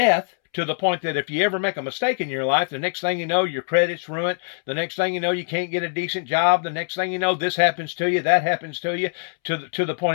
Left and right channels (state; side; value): silent; right; 63 dB below the other